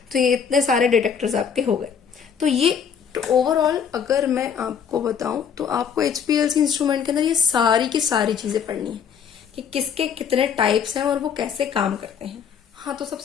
तो ये इतने सारे डिटेक्टर्स आपके हो गए। तो ये ओवरऑल अगर मैं आपको बताऊं तो आपको HPLC इंस्ट्रूमेंट के अंदर ये सारी की सारी चीजें पढ़नी है कि किसके कितने टाइप्स हैं और वो कैसे काम करते हैं। हाँ, तो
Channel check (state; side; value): quieter; right; 7.3 dB